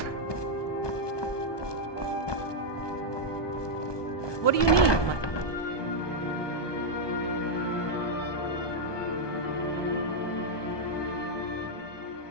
What do you need?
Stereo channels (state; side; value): late; right; 1.2 ms